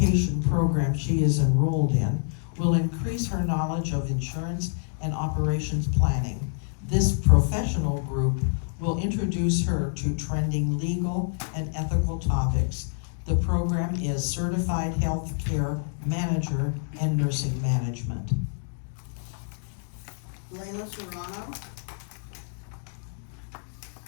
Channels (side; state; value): right; silent; digital silence